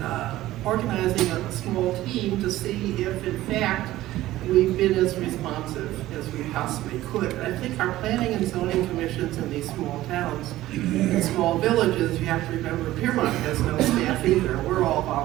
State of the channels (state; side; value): quieter; left; 15.6 dB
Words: organizing a small team to see if, in fact, we've been as responsive as we possibly could. I think our planning and zoning commissions in these small towns, in small villages, you have to remember Piermont has no staff either. We're all